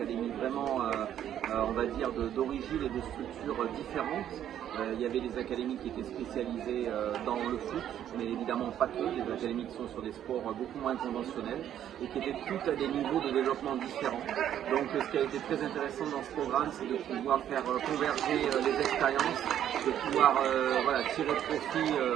vraiment, on va dire, d'origine et de structures différentes. Il y avait des académies qui étaient spécialisées dans le foot, mais évidemment pas que, des académies qui sont sur des sports beaucoup moins conventionnels et qui étaient toutes à des niveaux de développement différents. Donc ce qui a été très intéressant dans ce programme, c'est de pouvoir faire converger les expériences, de pouvoir tirer profit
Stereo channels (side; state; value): left; quieter; 10.6 dB